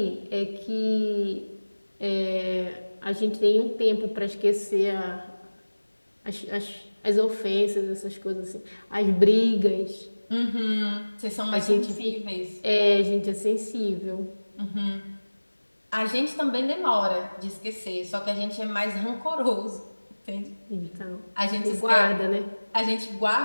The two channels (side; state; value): both; inverted; correlation -1.00